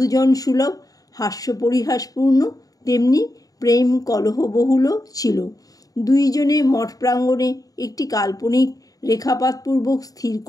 সুলভ হাস্যপরিহাসপূর্ণ, তেমনি প্রেম কলহবহুল ছিল। দুইজনে মঠ প্রাঙ্গণে একটি কাল্পনিক রেখাপাতপূর্বক স্থির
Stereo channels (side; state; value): right; late; 0.18 ms